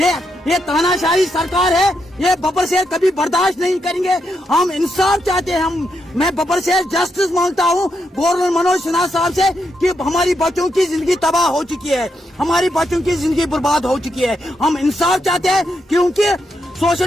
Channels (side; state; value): both; normal; correlation 0.81